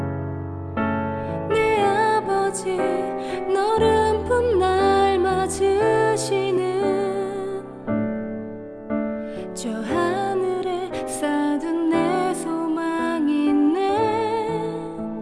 내 아버지 너른 품 날 맞으시는 저 하늘에 쌓둔 내 소망이 있네.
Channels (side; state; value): both; identical; correlation 1.00